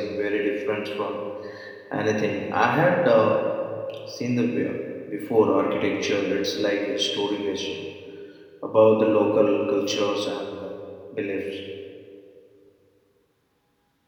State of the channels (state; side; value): identical; both; correlation 1.00